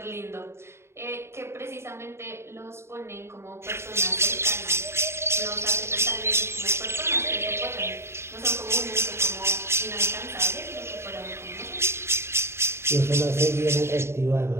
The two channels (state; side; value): late; left; 0.12 ms